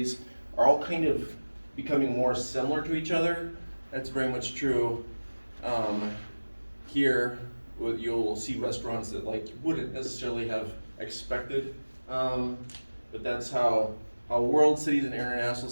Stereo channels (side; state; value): both; inverted; correlation -1.00